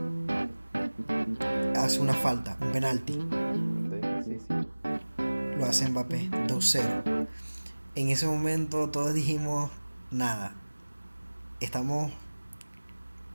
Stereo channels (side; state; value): both; inverted; correlation -1.00